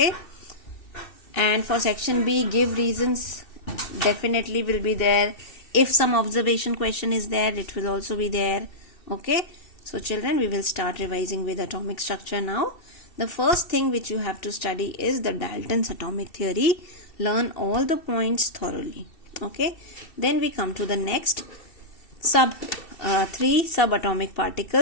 And for section B, give reasons, definitely will be there. If some observation question is there, it will also be there. Okay. So children, we will start revising with atomic structure now. The first thing which you have to study is the Dalton's atomic theory. Learn all the points thoroughly. Okay. Then we come to the next three subatomic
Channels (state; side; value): late; right; 2.7 ms